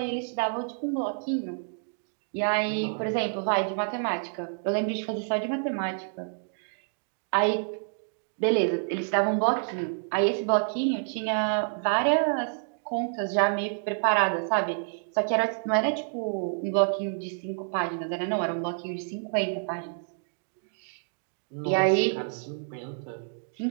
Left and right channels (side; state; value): left; silent; digital silence